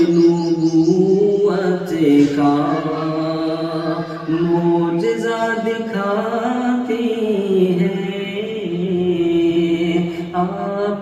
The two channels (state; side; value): identical; both; correlation 1.00